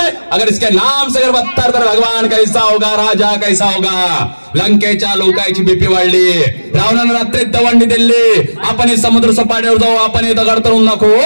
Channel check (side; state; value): both; inverted; correlation -1.00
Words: अगर इसके नाम से अगर बदतर तर भगवान कैसा होगा, राजा कैसा होगा. लंकेच्या लोकांची बीपी वाढली. रावणानं रात्री दवंडी दिली. आपण समुद्र सपाटीवर जाऊ. आपण दगड तरून नको.